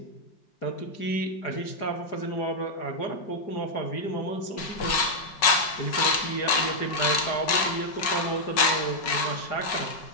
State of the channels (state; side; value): late; right; 5.3 ms